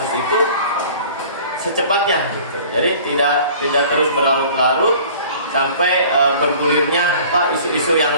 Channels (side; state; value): both; inverted; correlation -0.47